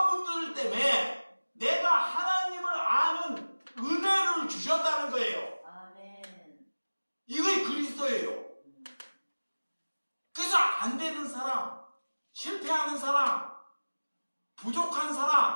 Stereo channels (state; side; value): inverted; both; correlation -1.00